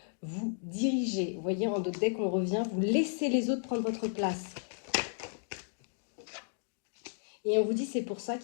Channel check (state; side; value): silent; right; digital silence